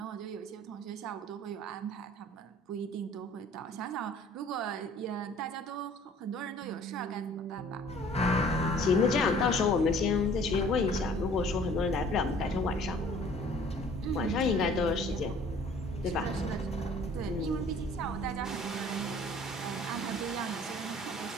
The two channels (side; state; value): both; normal; correlation 0.53